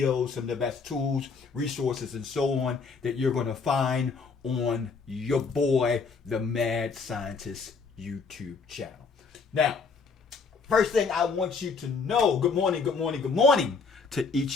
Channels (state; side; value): quieter; right; 4.8 dB